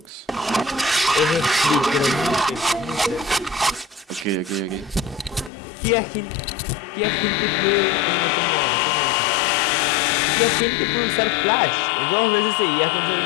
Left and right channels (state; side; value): drops out; right; at 5.5 s